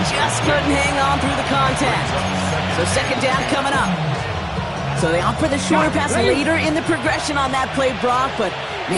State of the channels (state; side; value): identical; both; correlation 1.00